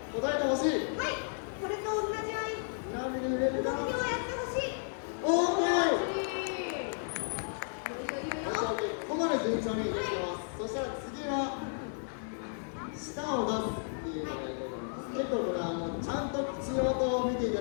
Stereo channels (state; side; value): silent; right; digital silence